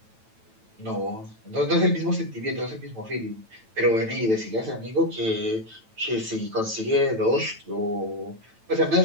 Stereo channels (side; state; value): left; late; 9.0 ms